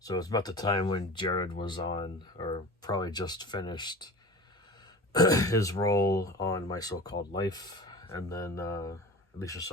it's about the time when Jared was on, or probably just finished his role on My So-Called Life, and then Alicia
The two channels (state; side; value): normal; both; correlation 0.36